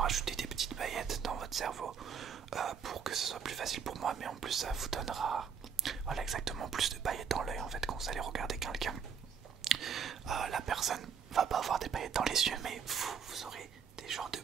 des petites paillettes dans votre cerveau pour que ce soit plus facile pour moi, mais en plus ça vous donnera, voilà, exactement, plus de paillettes dans l'œil en fait quand vous allez regarder quelqu'un. La personne va pas avoir des paillettes dans les yeux, mais vous aurez des genres de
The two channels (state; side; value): quieter; left; 7.0 dB